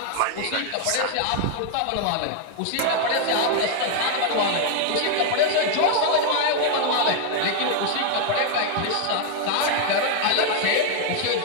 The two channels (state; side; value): different; both; correlation 0.00